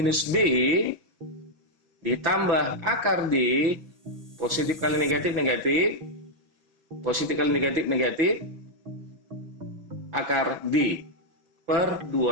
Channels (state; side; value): late; left; 5.9 ms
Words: B ditambah akar D, positif kali negatif negatif, positif kali negatif negatif, akar D per